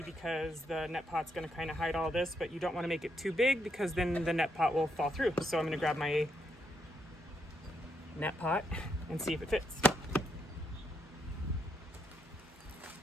because the net pot's going to kind of hide all this, but you don't want to make it too big because then the net pot will fall through. So I'm going to grab my net pot and see if it fits.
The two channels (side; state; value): both; normal; correlation 0.78